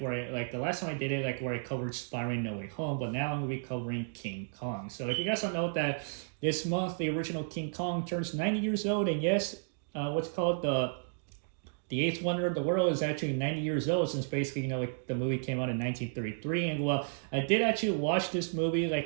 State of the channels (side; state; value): left; silent; digital silence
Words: the last time I did it, like where I covered Spider-Man No Way Home. But now I'm going to be covering King Kong. So if you guys don't know that this month the original King Kong turns 90 years old, and yes, what's called the eighth wonder of the world is actually 90 years old since basically, like the movie came out in 1933. And well, I did actually watch this movie,